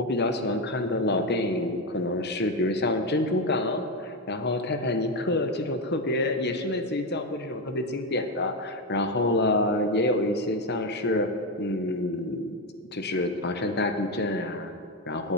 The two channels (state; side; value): normal; both; correlation 0.11